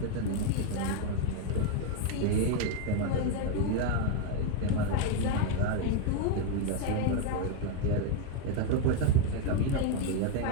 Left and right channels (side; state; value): both; different; correlation 0.01